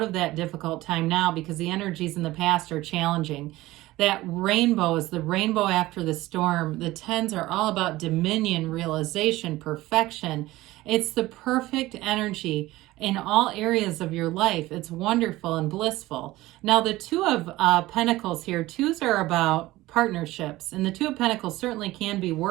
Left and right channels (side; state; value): left; quieter; 17.8 dB